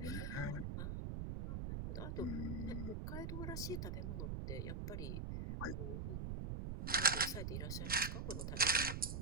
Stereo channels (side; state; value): right; noise; rumble, 3 dB below the sound